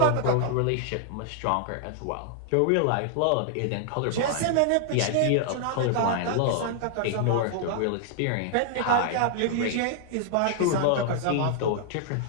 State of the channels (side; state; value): both; different; correlation -0.01